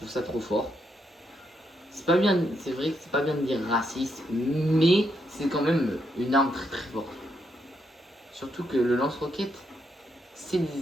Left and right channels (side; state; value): both; normal; correlation 0.79